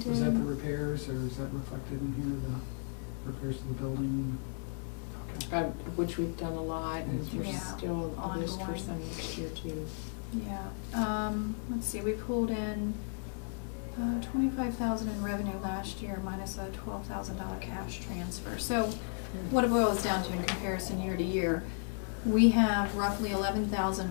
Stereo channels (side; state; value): right; silent; 55 dB below the other